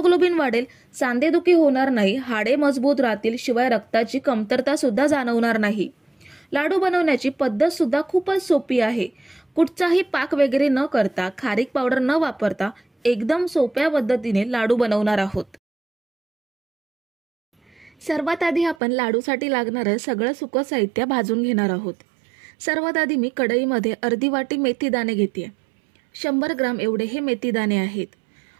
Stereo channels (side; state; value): left; drops out; at 18.8 s